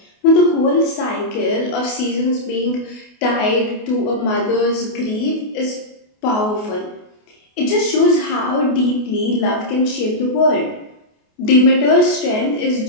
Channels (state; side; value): late; right; 28 ms